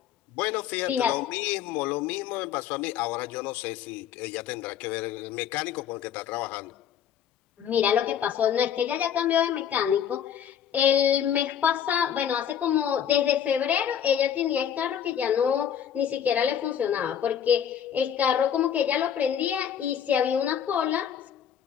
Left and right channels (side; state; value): right; quieter; 8.8 dB